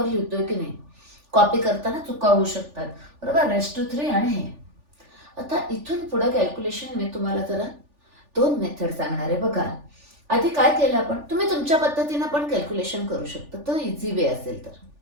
लिहितोय की नाही. कॉपी करताना चुका होऊ शकतात, बरोबर. रेस टू 3 आणि हे. आता इथून पुढे कॅल्क्युलेशन मी तुम्हाला जरा 2 मेथड सांगणार आहे. बघा, आधी काय केलं आपण, तुम्ही तुमच्या पद्धतीने पण कॅल्क्युलेशन करू शकता, तो इझी वे असेल तर.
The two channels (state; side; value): late; left; 3.4 ms